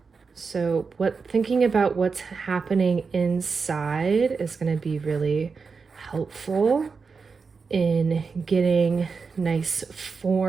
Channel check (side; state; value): left; quieter; 5.0 dB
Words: So thinking about what's happening inside is going to be really helpful in getting nice